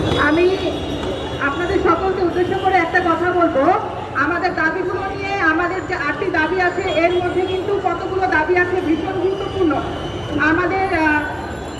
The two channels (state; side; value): identical; both; correlation 1.00